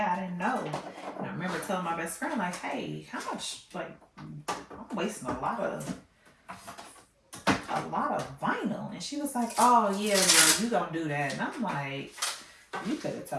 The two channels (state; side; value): identical; both; correlation 1.00